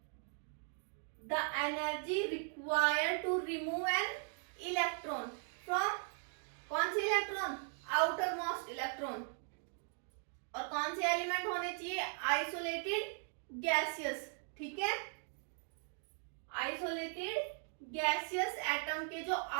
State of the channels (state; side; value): silent; left; 52 dB below the other